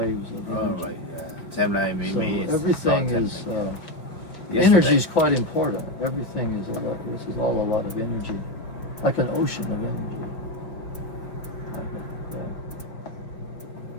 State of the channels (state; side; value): late; right; 5.4 ms